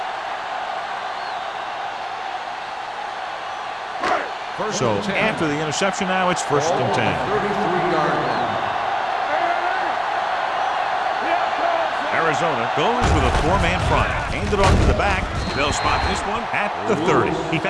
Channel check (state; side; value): identical; both; correlation 1.00